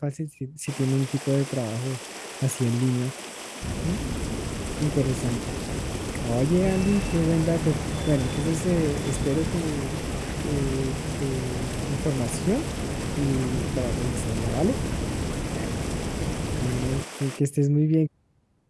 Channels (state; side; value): identical; both; correlation 1.00